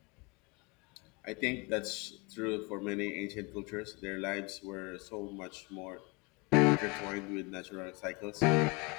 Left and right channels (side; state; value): right; quieter; 28.8 dB